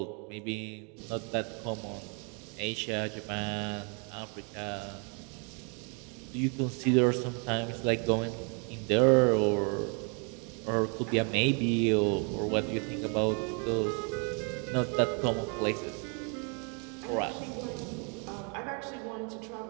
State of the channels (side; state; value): left; quieter; 36.7 dB